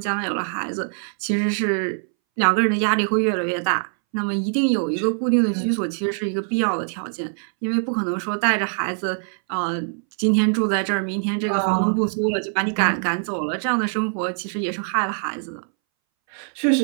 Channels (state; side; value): silent; left; 62 dB below the other